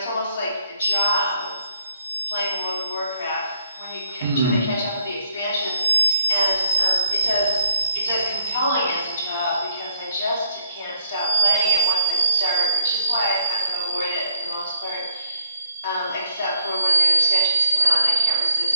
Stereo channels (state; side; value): inverted; both; correlation -0.71